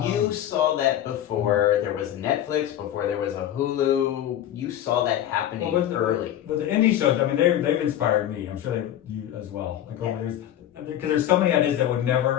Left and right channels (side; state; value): right; quieter; 11.5 dB